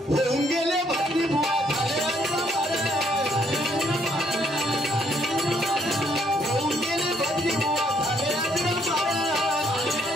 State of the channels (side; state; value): both; normal; correlation 0.69